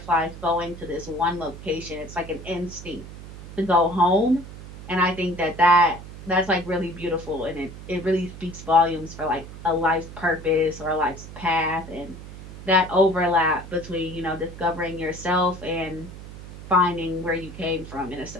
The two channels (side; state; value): right; noise; hum, 14 dB below the sound